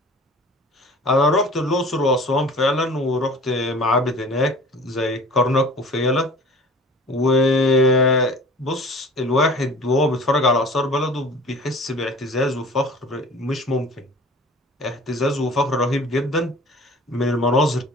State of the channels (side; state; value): both; normal; correlation 0.44